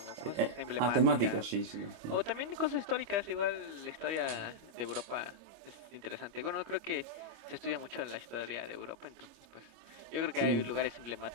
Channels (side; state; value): left; late; 26 ms